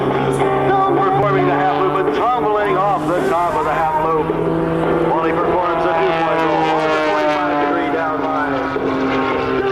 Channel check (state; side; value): identical; both; correlation 1.00